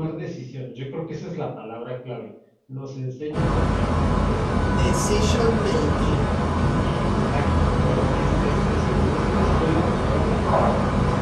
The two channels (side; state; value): both; identical; correlation 1.00